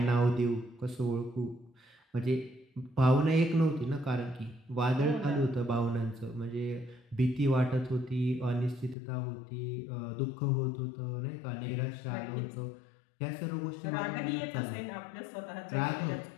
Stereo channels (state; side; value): drops out; right; at 9.0 s